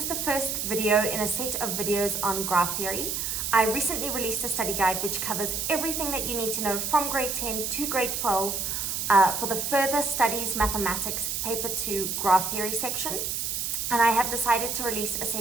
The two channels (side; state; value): right; noise; hiss, 2 dB below the sound